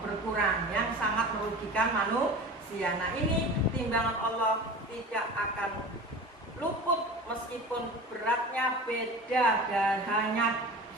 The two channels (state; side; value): normal; both; correlation 0.35